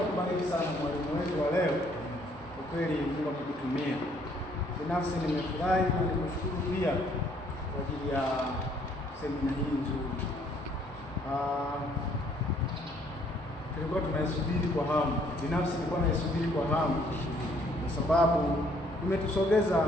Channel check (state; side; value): normal; both; correlation 0.64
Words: sana mwalimu wetu wa leo. Kwa kweli Mungu akutumia. Binafsi nimefurahi na nimeshukuru pia kwa ajili ya semina hii nzuri. Tulikuwa tunaisubiri kwa hamu. Binafsi nilikuwa naisubiri kwa hamu kwa sababu imetusogeza